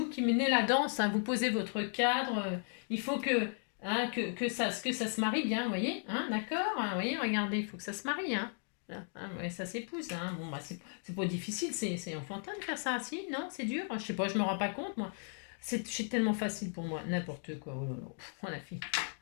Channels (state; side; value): silent; right; 54 dB below the other